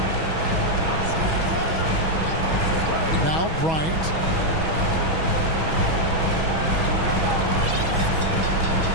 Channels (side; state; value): left; late; 6.2 ms